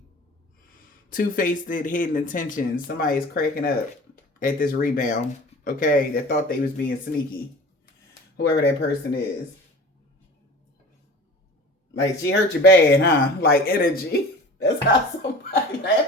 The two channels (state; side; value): normal; both; correlation 0.40